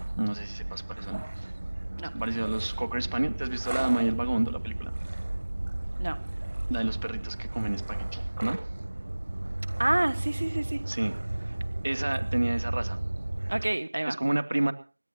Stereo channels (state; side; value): inverted; both; correlation -1.00